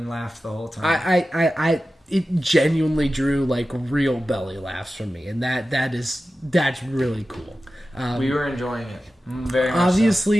laughed the whole time. It genuinely drew like real belly laughs from me, and that's really cool. We were enjoying it very much.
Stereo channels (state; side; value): normal; both; correlation 0.94